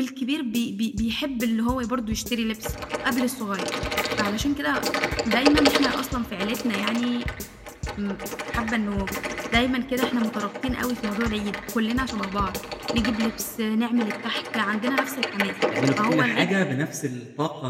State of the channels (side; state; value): both; identical; correlation 1.00